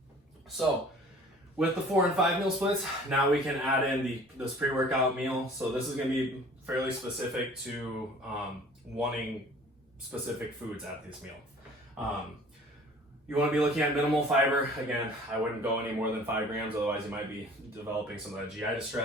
So with the 4 and 5 meal splits, now we can add in this pre-workout meal. So this is going to be fairly specific to wanting specific foods at this meal. You want to be looking at minimal fiber. Again, I wouldn't go any more than 5 grams, otherwise you might be developing some of that GI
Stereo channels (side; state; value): both; normal; correlation 0.49